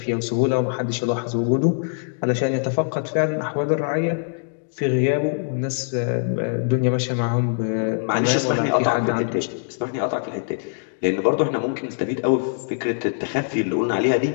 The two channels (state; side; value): silent; right; digital silence